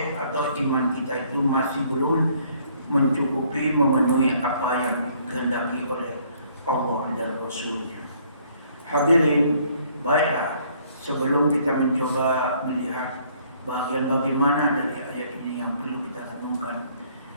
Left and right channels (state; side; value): inverted; both; correlation -0.63